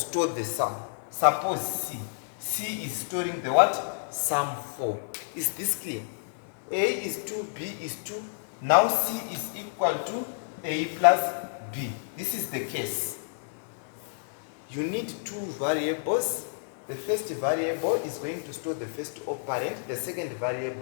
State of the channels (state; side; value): silent; right; 58 dB below the other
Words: the sum. Suppose C. C is storing the what? Sum 4. Is this clear? A is 2, B is 2. Now C is equal to A plus B. This is the case. You need two variables. The first variable is going to store the first operand. The second